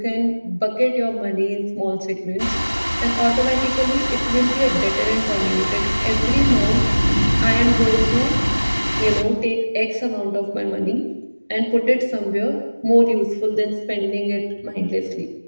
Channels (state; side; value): inverted; both; correlation -1.00